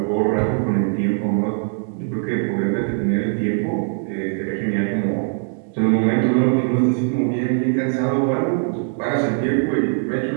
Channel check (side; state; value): left; silent; 57 dB below the other